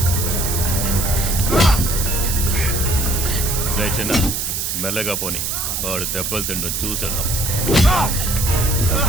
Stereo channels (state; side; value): noise; right; hiss, 2 dB below the sound